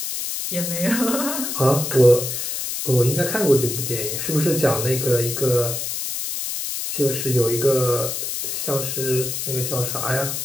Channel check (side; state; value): left; noise; hiss, 3 dB below the sound